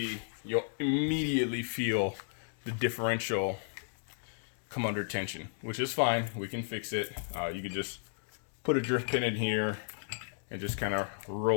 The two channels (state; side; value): silent; right; digital silence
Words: immediately feel the differential come under tension, which is fine. We can fix it. You can just put a drift pin in here and just kind of